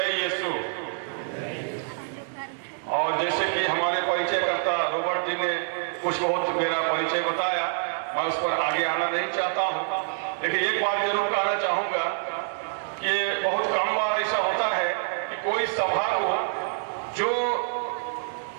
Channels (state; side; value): silent; left; digital silence